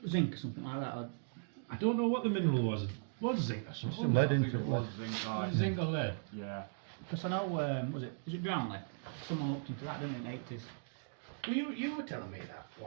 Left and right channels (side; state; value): left; silent; digital silence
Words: zinc or something like that? Or I don't know what the mineral was. It was zinc or something. Some lead I think into it it, was lead. zinc. Was it zinc or lead? Yeah. Because I know, is it Brownlee? Someone looked into that, didn't it, in the 80s? Well, you were telling me that